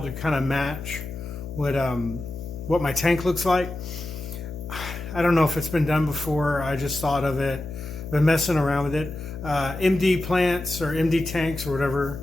to kind of match what my tank looks like. I don't know if it's been done before. I just thought of it, been messing around with it. MD plants or MD tanks or whatever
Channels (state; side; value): noise; left; hum, 9 dB below the sound